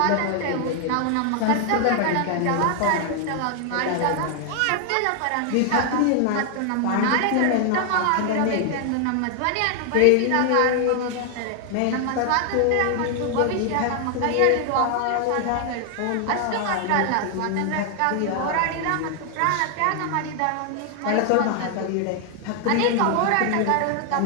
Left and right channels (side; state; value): both; different; correlation 0.00